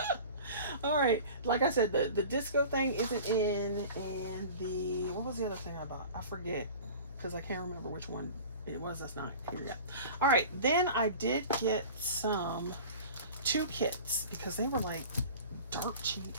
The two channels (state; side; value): inverted; both; correlation -0.39